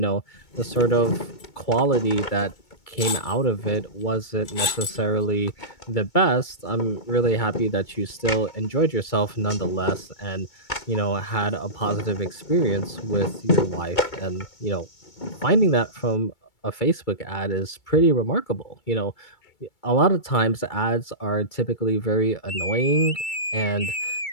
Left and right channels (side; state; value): right; late; 2.3 ms